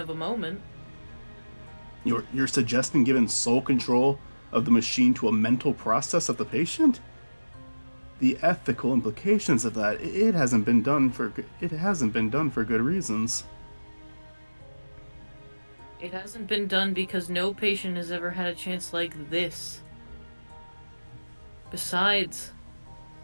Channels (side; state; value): both; inverted; correlation -1.00